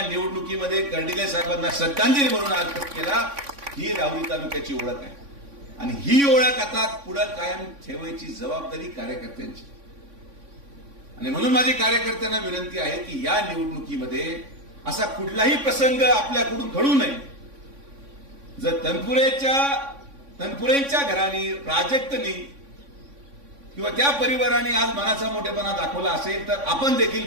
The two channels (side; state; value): left; late; 3.5 ms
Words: निवडणुकीमध्ये कर्डिले साहेबांना श्रद्धांजली म्हणून अर्पण केला. ही राहुरी तालुक्याची ओळख आहे आणि ही ओळख आता पुढे कायम ठेवायची जबाबदारी कार्यकर्त्यांची. आणि म्हणून माझी कार्यकर्त्यांना विनंती आहे की या निवडणुकीमध्ये असा कुठलाही प्रसंग आपल्याकडून घडू नये. जर तनपुरेंच्या घराने, प्राजक्तनी किंवा त्या परिवाराने आज मनाचा मोठेपणा दाखवला असेल तर आपण देखील